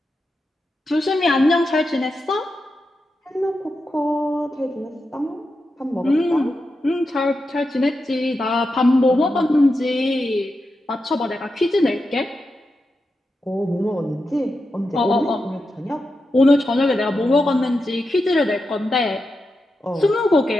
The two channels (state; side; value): normal; both; correlation 0.88